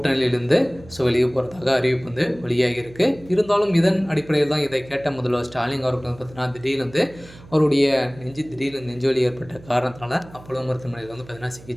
வெளியே போகிறதாக அறிவிப்பு வெளியாகி இருக்குது. இருந்தாலும் இதன் அடிப்படையில் தான் இதை கேட்ட முதல்வர் ஸ்டாலின் அவர்கள் பார்த்தீங்கன்னா திடீர்னு அவருடைய திடீர்னு நெஞ்சுவலி ஏற்பட்ட காரணத்தினால அப்போலோ மருத்துவமனையில் பார்த்தீங்கன்னா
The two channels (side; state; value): right; noise; hum, 21 dB below the sound